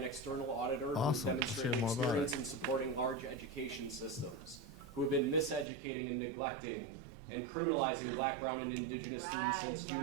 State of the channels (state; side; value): drops out; left; at 5.7 s